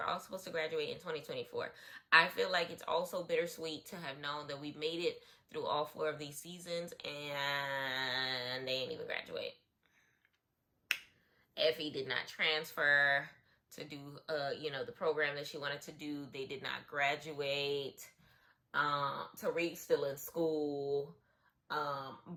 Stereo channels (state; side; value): identical; both; correlation 1.00